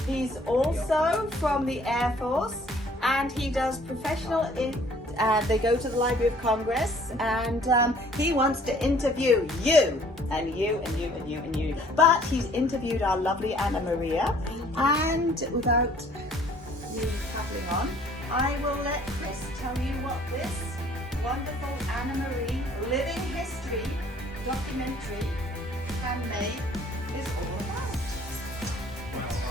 he's also from the Air Force, and he does professional they go to the Library of Congress, and he wants to interview you and you and you and you and you. But he's interviewed our lovely Anna Maria, and without me tattling on, I will let Chris tell you what this wonderful Anna Marie living history documentary, handmade, is all about.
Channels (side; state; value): both; normal; correlation 0.57